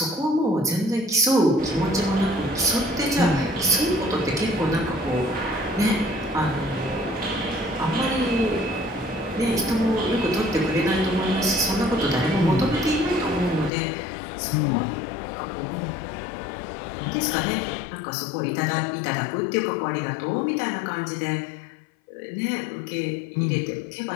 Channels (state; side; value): drops out; right; at 13.7 s